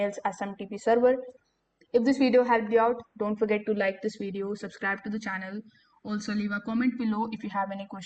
SMTP server. If this video helped you out, don't forget to like this video, subscribe to the channel. Also leave a comment below if you have any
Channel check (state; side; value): identical; both; correlation 1.00